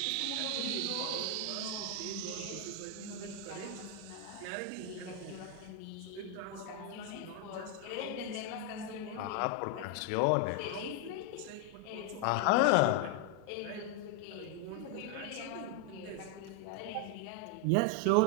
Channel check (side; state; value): both; different; correlation 0.01